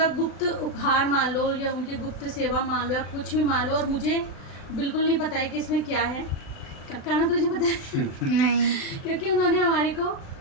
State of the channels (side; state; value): right; late; 36 ms